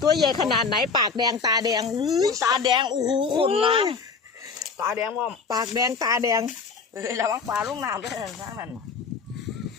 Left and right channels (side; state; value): right; quieter; 5.1 dB